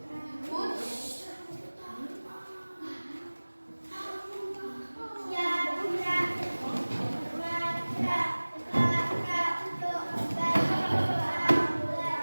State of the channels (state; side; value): inverted; both; correlation -1.00